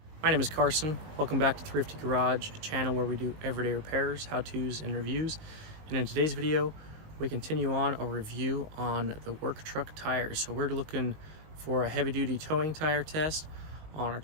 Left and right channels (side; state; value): left; late; 19 ms